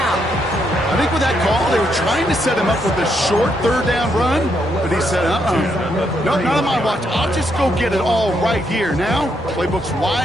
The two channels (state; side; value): normal; both; correlation 0.77